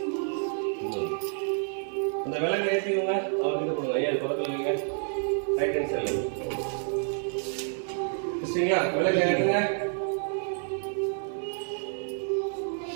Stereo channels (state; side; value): silent; left; 59 dB below the other